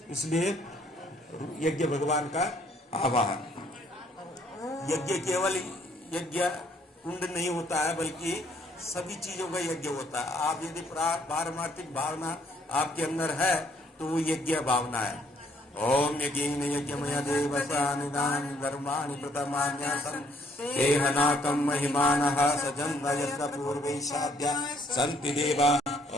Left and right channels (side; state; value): both; normal; correlation 0.66